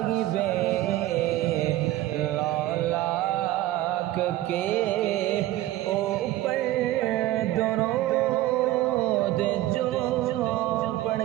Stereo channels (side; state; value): left; quieter; 15.3 dB